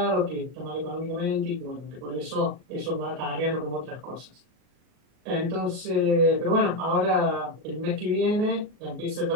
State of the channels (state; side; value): late; left; 39 ms